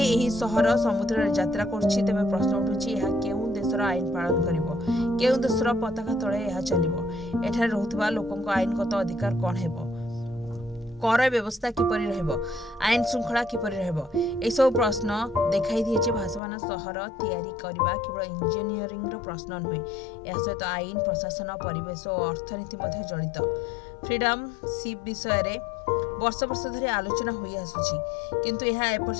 एही सहर समुद्र रे यात्रा करछि, तेबे प्रश्न उठुछि एहा केउ देशर आईन पालन करिवो, केउ देशर पताका तळे एहा चलिवो, एठारे रहुतबा लोकंक आईनगत अधिकार कोन हेबो, कर व्यवस्था किपरि रहबो, आईन श्रृंखला किपरि रहबो? ए सब प्रश्न देखाई दिए जे भासमान सहर तैयारी करिबा केवल इंजीनियरिंग रो प्रश्न नुहे, या सहित आईन, प्रशासन, परिवेश और अर्थनीति मध्ये जड़ित। फ्रीडम शिप विषय रे वर्ष वर्ष धरि आलोचना होई आसुछि, किंतु एहा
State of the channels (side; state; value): right; drops out; at 16.4 s